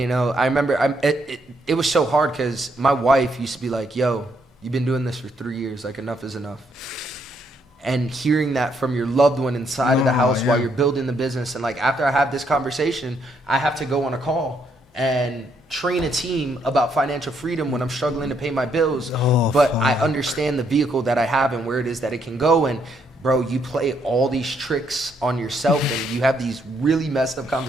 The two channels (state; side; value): normal; both; correlation 0.73